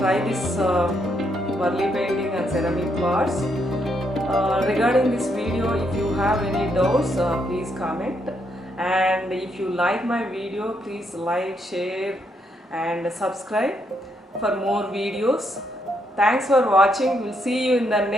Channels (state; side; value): normal; both; correlation 0.76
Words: try this Warli painting and ceramic pots. Regarding this video, if you have any doubts, please comment. And if you like my video, please like, share and subscribe for more videos. Thanks for watching. We'll see you in the